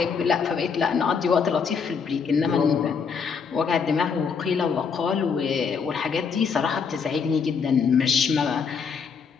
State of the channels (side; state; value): right; quieter; 6.0 dB